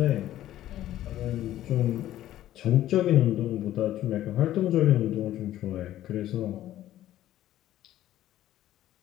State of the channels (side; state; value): right; quieter; 13.3 dB